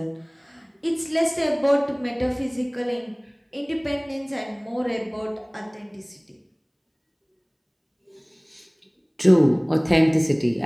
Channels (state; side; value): identical; both; correlation 1.00